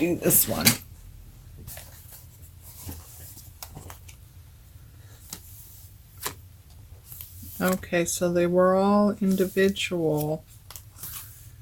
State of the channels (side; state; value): both; identical; correlation 1.00